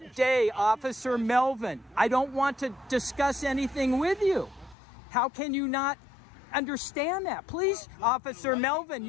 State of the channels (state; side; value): drops out; right; at 4.8 s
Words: day, Officer Melvin. I don't want to discuss anything with you. How can you not understand that? Please, Officer Melvin,